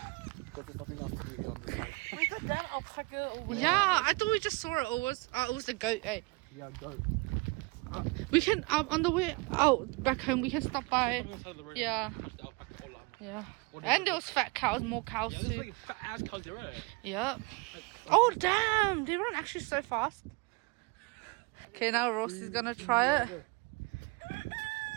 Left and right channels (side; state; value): left; quieter; 27.5 dB